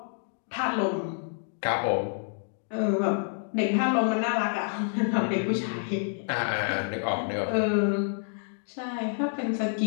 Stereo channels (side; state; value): right; silent; 59 dB below the other